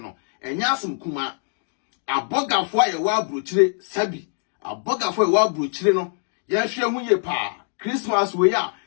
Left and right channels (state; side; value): silent; right; 55 dB below the other